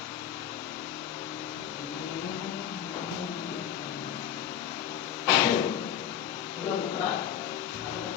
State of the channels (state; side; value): quieter; right; 9.8 dB